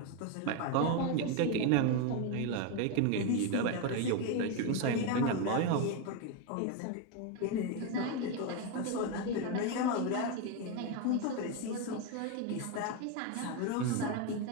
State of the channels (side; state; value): both; different; correlation 0.02